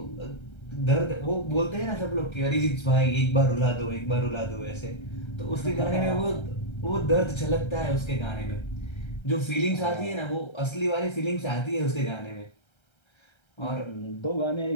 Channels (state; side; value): late; right; 1.3 ms